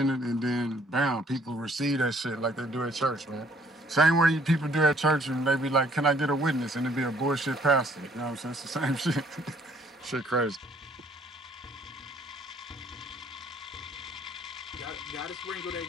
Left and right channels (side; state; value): both; normal; correlation 0.62